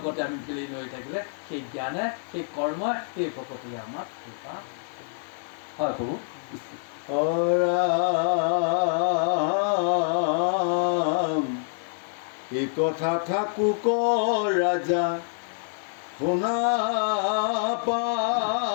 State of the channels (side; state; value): right; silent; digital silence